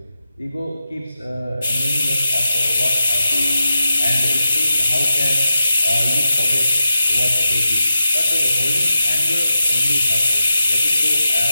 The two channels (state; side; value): inverted; both; correlation -0.90